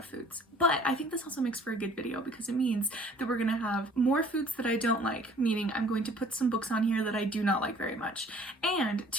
foods, but I think this also makes for a good video because it means that we're gonna have more foods that I don't like, meaning I'm going to put some books on here that I do not like very much. And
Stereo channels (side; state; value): both; normal; correlation 0.53